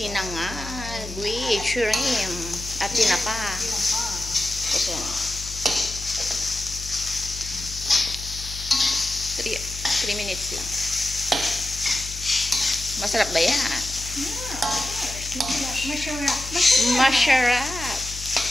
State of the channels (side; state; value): left; noise; hum, 11 dB below the sound